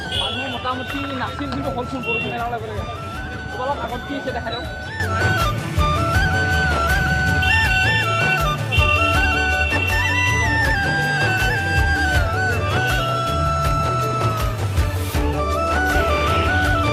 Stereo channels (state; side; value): identical; both; correlation 1.00